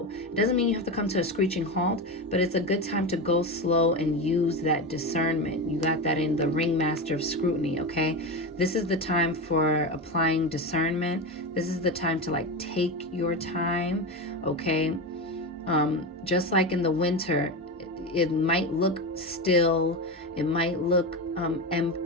It doesn't mean you have to come to a screeching halt, but it's a good time to go slow and use that discernment. You got that in the Ringmaster of Scrutiny, okay? This is the time for applying discernment. This is the time to like take your time, okay? Just like in the winter, it might look still, it might look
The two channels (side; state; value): both; normal; correlation 0.19